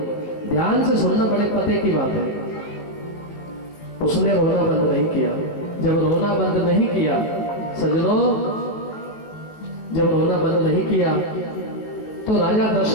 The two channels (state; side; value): late; right; 19 ms